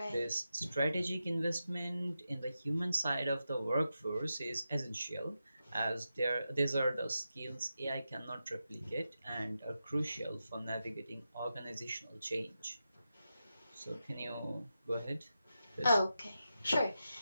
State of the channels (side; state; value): both; inverted; correlation -0.89